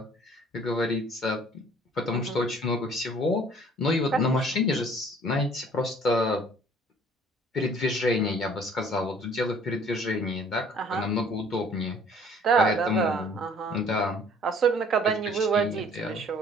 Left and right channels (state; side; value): normal; both; correlation 0.55